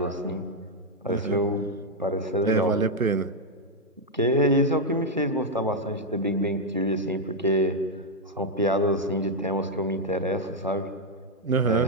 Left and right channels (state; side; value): normal; both; correlation 0.00